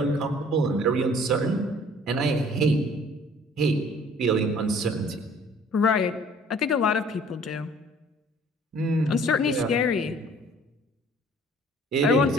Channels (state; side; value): normal; both; correlation 0.53